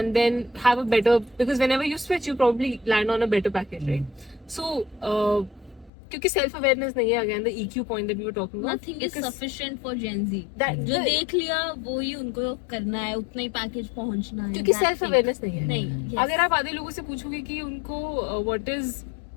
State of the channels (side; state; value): right; drops out; at 5.9 s